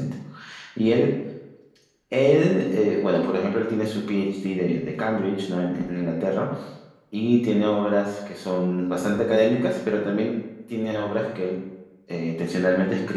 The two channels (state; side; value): identical; both; correlation 1.00